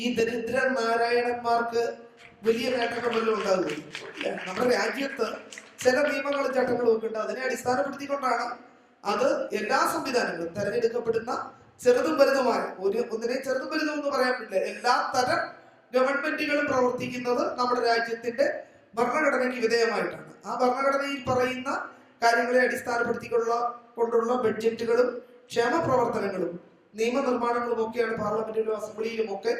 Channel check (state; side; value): identical; both; correlation 1.00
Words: ഈ ദരിദ്ര നാരായണന്മാർക്ക് വലിയ നേട്ടങ്ങൾ വല്ലതും ഉണ്ടാകുകയില്ല. നമ്മുടെ രാജ്യത്ത് ചില നിയമങ്ങളും ചട്ടങ്ങളും ഒക്കെ ഉണ്ട്. അതിനെ അടിസ്ഥാനപ്പെടുത്തിക്കൊണ്ടാണ് അത് എല്ലാ സംവിധാനങ്ങളും തെരഞ്ഞെടുക്കപ്പെടുന്ന ചെറുതും വലുതുമായ ഒന്നിനെ ചെറുതും വലുതും എന്ന് പറയാൻ പറ്റില്ല, എല്ലാ തരം ഗവൺമെന്റുകളും പ്രവർത്തിക്കുന്നത് നമ്മുടെ രാജ്യത്തിന്റെ ഭരണഘടനയ്ക്ക് വിധേയമായിട്ടാണ്. ആ ഭരണഘടനയിൽ പറയുന്ന കാര്യങ്ങളെ അടിസ്ഥാനപ്പെടുത്തിക്കൊണ്ടുള്ള ബഡ്ജറ്റുകളും ക്ഷേമ പ്രവർത്തനങ്ങളും നിയമനിർമ്മാണങ്ങളും ഒക്കെയാണ് പാർലമെന്റിലും അസംബ്ലിയിലും ഒക്കെ